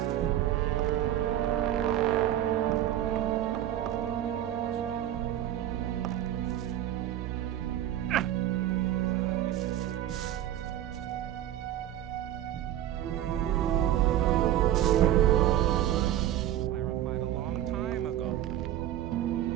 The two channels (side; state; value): left; quieter; 12.2 dB